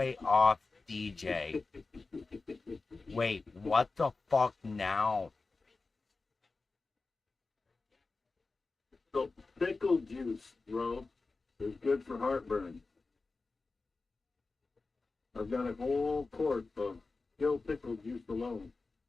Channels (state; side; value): quieter; right; 3.8 dB